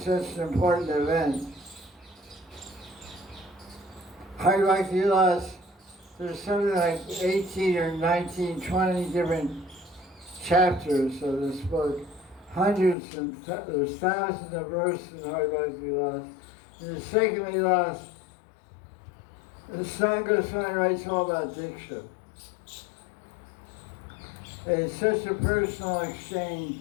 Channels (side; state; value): right; drops out; at 13.0 s